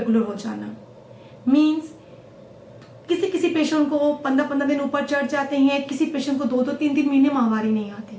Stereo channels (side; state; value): both; identical; correlation 1.00